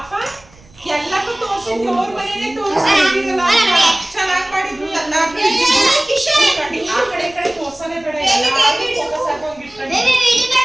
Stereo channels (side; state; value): right; noise; rumble, 26 dB below the sound